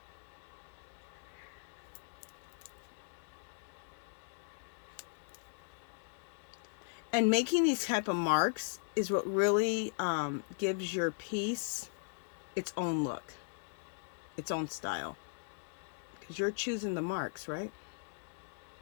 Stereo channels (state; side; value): silent; right; digital silence